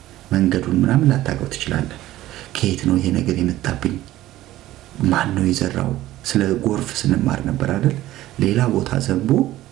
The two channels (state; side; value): quieter; left; 15.2 dB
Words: መንገዱን ምናምን ላታውቀው ትችላለህ። ከየት ነው ይሄ ነገር የመጣብኝ? ማን ነው የዘራው? ስለ ጎርፍ ስንማር ነበር አይደል? ሌላ ቦታ ዘንቦ